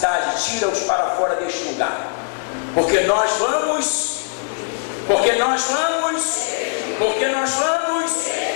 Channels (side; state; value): right; silent; 65 dB below the other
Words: tira-os para fora deste lugar, porque nós vamos